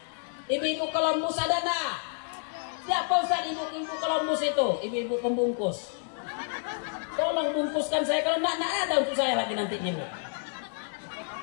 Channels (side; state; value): right; silent; 58 dB below the other